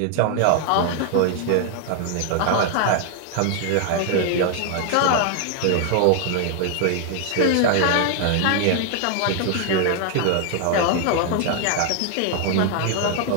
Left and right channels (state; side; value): different; both; correlation 0.00